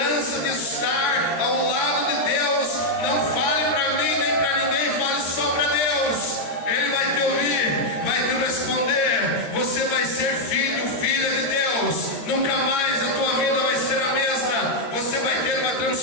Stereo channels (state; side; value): late; right; 13 ms